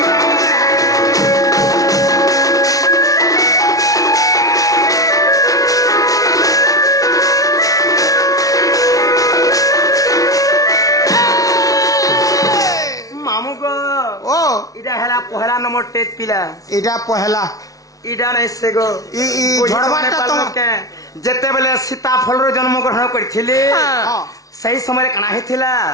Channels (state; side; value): late; right; 0.17 ms